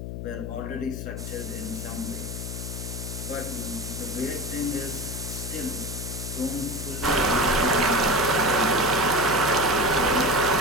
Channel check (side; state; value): left; noise; hum, 6 dB below the sound